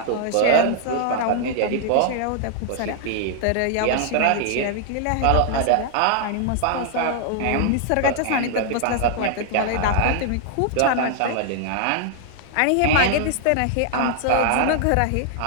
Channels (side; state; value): both; different; correlation 0.00